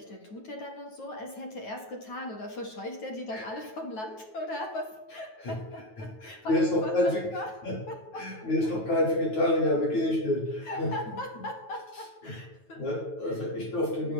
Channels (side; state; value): right; late; 9.2 ms